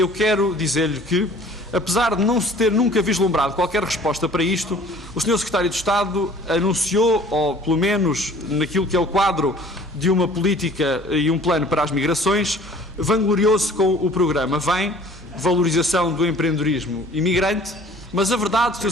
quero dizer-lhe que, apesar de não se ter nunca vislumbrado qualquer resposta para isto, o Sr. Secretário de Estado anunciou, ou pelo menos naquilo que é o quadro de uma política e um plano para as migrações, vangloriou-se com o programa VEM, valorização do empreendedorismo imigrante, mas a verdade, Sr.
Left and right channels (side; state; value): both; normal; correlation 0.50